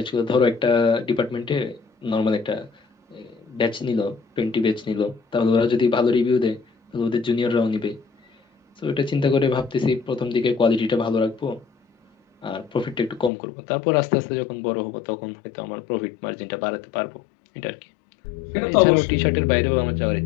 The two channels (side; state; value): right; drops out; at 13.3 s